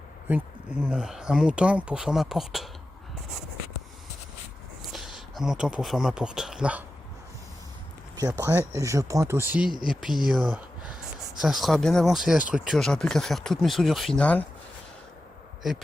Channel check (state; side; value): normal; both; correlation 0.92